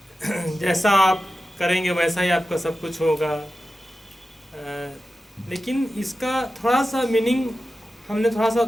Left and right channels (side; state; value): both; normal; correlation 0.93